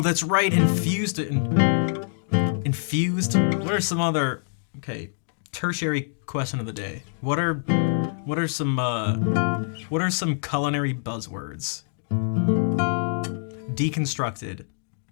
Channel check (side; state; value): right; silent; digital silence